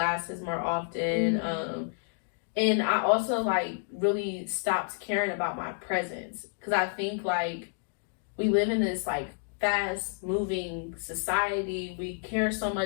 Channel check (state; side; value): silent; right; 58 dB below the other